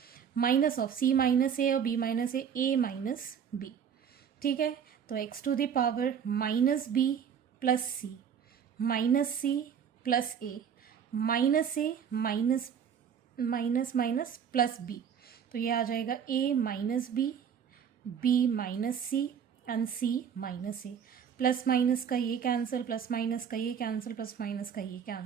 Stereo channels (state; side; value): quieter; left; 7.9 dB